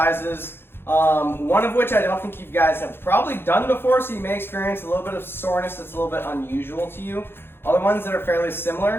one of which I don't think you guys have probably done before, so you may experience a little bit of soreness that's a little bit unusual to you. Other ones that are fairly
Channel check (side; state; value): right; late; 0.11 ms